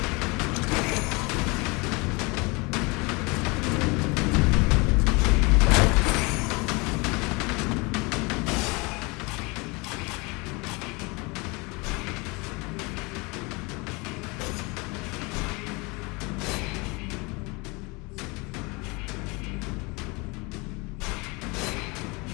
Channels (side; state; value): right; quieter; 27.2 dB